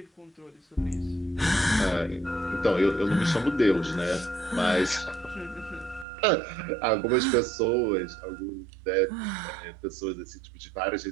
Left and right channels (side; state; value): left; drops out; at 6.1 s